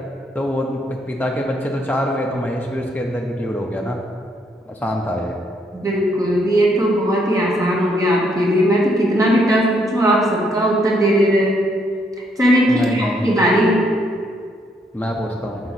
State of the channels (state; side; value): normal; both; correlation 0.72